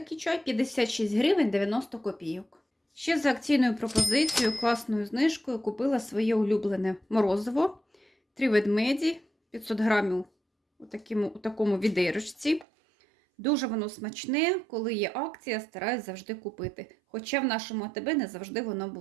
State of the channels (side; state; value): left; drops out; at 12.7 s